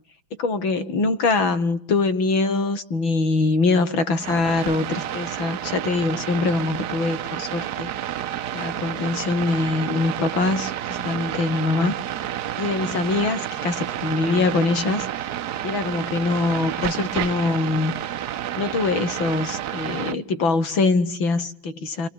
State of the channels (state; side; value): late; right; 4.7 ms